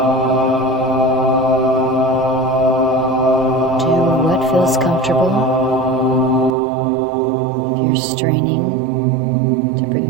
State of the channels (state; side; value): drops out; left; at 6.6 s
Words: Feels comfortable. If you're straining to